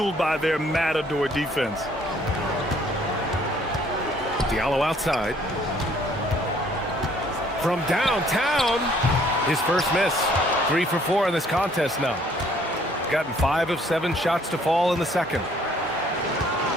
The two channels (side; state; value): both; normal; correlation 0.61